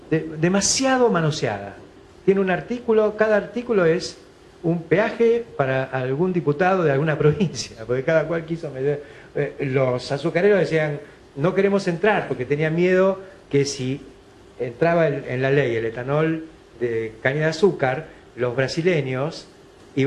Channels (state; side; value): identical; both; correlation 1.00